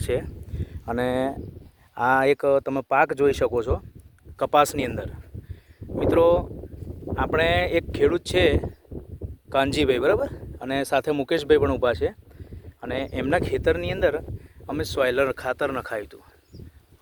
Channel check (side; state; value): both; identical; correlation 1.00